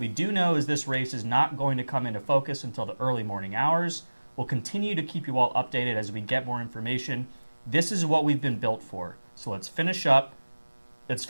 do know is this race is not going to come into focus until the early morning hours. We'll continue to keep you all updated as we get more information. This is what we've been built for. So let's finish up. Let's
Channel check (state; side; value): inverted; both; correlation -1.00